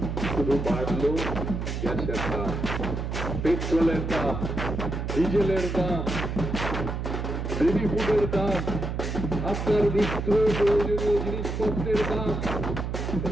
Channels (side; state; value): right; noise; hum, 3 dB below the sound